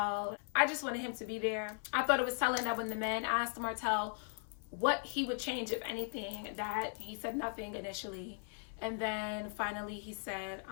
I just wanted him to be there. I thought it was telling that when the men asked Martell what he would change, if anything, that he said nothing initially. And then finally he said,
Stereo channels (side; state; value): right; silent; 52 dB below the other